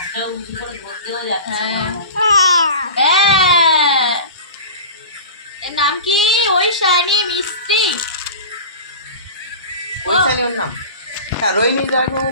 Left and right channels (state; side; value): inverted; both; correlation -0.34